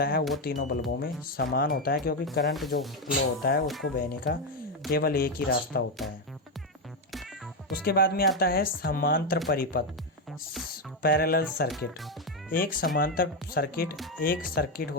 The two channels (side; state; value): both; normal; correlation 0.07